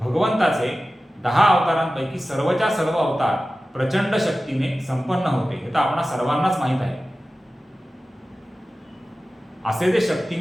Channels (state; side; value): normal; both; correlation 0.95